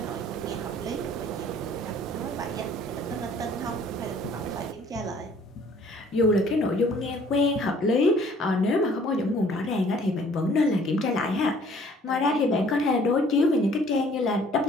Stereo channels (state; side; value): normal; both; correlation 0.56